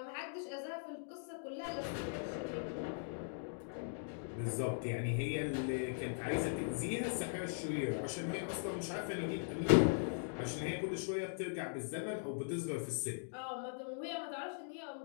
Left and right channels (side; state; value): right; silent; digital silence